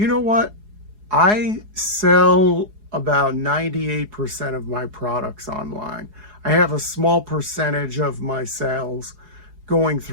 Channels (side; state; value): left; late; 4.8 ms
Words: know what? I sell about 98% of my products online. I have a small percentage of my sales going